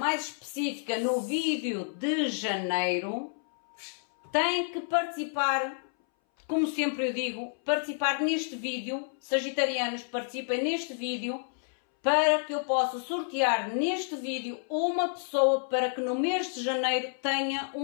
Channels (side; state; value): right; silent; 58 dB below the other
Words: específica no vídeo de janeiro, tem que participar. Como sempre eu digo, participar neste vídeo, sagitarianos, participem neste vídeo, para que eu possa sortear neste vídeo uma pessoa para que no mês de janeiro tenha